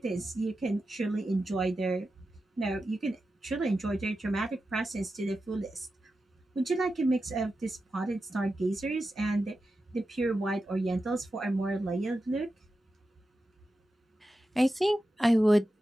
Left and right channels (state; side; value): normal; both; correlation 0.91